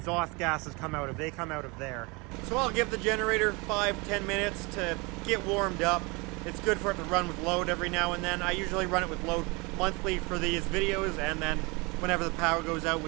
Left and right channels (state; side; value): quieter; left; 27.3 dB